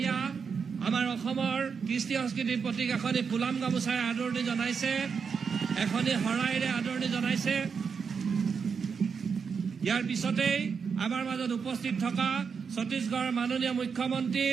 আমাৰ অসমৰ কৃষ্টি সংস্কৃতিৰ প্ৰতীক এখনি ফুলাম গামোচাৰে আদৰণি জনাইছে, এখনি শৰাইৰে আদৰণি জনাইছে। ইয়াৰ পিছতেই আমাৰ মাজত উপস্থিত থকা ছত্তীশগড়ৰ মাননীয় মুখ্যমন্ত্ৰী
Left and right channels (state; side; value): quieter; left; 6.0 dB